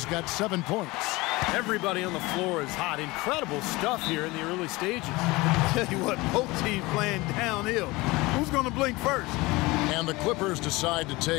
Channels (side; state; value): right; quieter; 22.0 dB